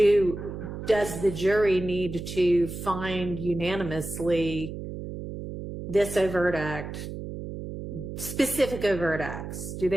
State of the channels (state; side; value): noise; right; hum, 8 dB below the sound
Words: the jury need to find unanimously this overt act, specific overt acts? Do